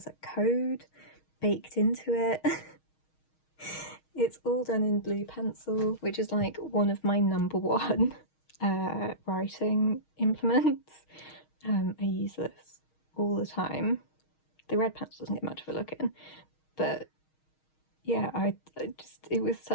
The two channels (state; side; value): late; right; 6.4 ms